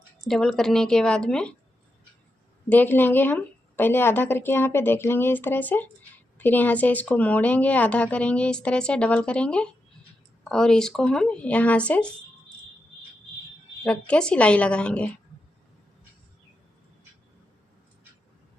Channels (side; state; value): both; normal; correlation 0.87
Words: डबल करने के बाद में देख लेंगे, हम पहले आधा करके यहाँ पे देख लेंगे इस तरह से। फिर यहाँ से इसको मोड़ेंगे, आधा करेंगे इस तरह से, डबल करेंगे और इसको हम यहाँ से रख के सिलाई लगाएंगे।